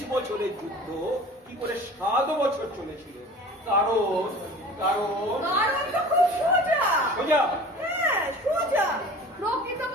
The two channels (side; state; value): both; normal; correlation 0.41